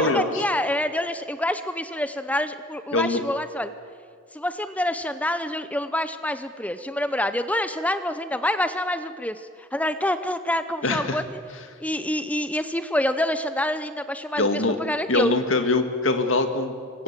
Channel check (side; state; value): both; normal; correlation 0.47